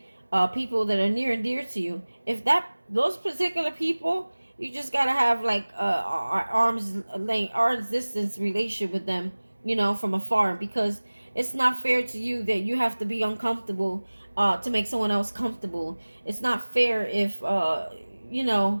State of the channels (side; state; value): both; inverted; correlation -1.00